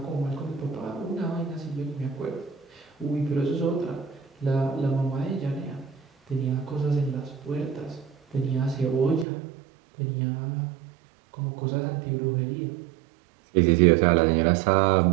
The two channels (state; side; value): drops out; left; at 9.2 s